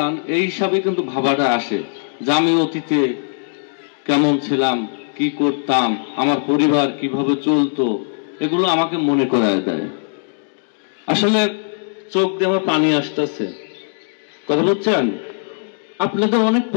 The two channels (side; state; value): right; silent; digital silence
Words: এই হিসাবে কিন্তু ভাবাটা আসে যে আমি অতীতে কেমন ছিলাম, কি করতাম, আমার পরিবার কিভাবে চলতো, এগুলো আমাকে মনে করায় দেয়। আসলে চোখ দিয়ে আমার পানি আসতেছে, কথা বলছেন। আপনাদের অনেক